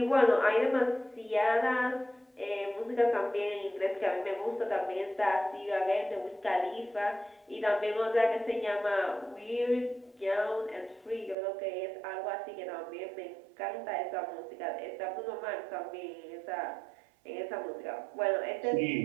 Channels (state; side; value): drops out; left; at 11.4 s